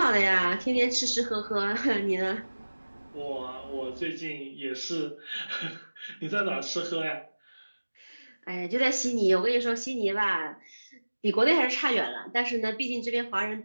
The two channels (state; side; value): inverted; both; correlation -1.00